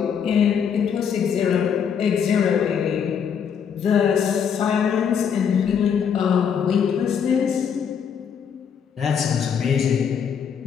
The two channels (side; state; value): right; quieter; 7.4 dB